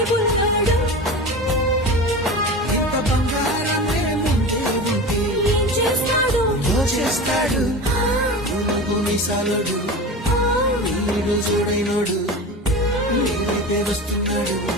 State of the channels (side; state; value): both; normal; correlation 0.29